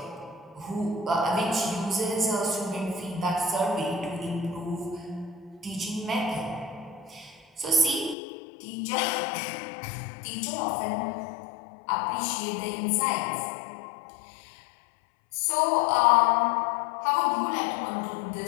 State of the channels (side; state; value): right; drops out; at 8.2 s